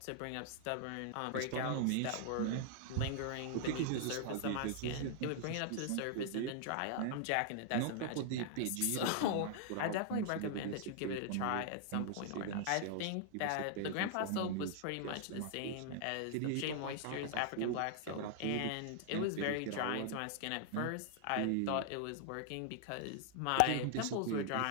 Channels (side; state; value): both; different; correlation 0.00